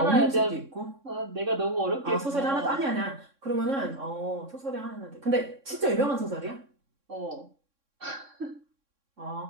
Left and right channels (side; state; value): left; late; 3.6 ms